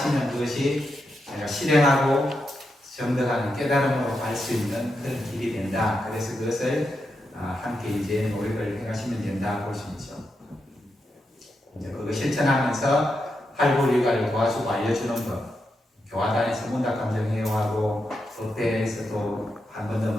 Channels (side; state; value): both; normal; correlation 0.85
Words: 그것이 제가 실행하고 정득하는 깨달음으로 갈 수 있는 그런 길이 된다. 그래서 그것을 함께 이제 노력을 해가시면 된다 볼 수 있죠. 이제 그거 실천하면서 활불일과를 도와주고 알려주는 것, 교화단에서 문답감정회화하고 법대에서도 한 번 더